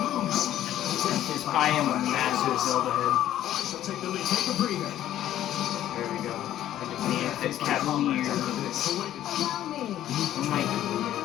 I am a massive Zelda head. Take the lead. Take a breather. There we go. I defeated the Cavalier. Oh my god.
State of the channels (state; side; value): quieter; right; 12.3 dB